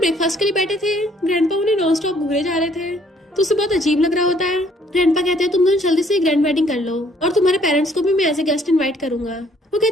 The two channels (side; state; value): both; normal; correlation 0.63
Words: के लिए बैठे थे ग्रैंडपा उन्हें नॉन स्टॉप घूरे जा रहे थे तो उसे बहुत अजीब लग रहा होता है। ग्रैंडपा कहते हैं तुम दोनों जल्दी से ग्रैंड वेडिंग कर लो और तुम्हारे पेरेंट्स को भी मैं एज ए गेस्ट इनवाइट करूंगा। वो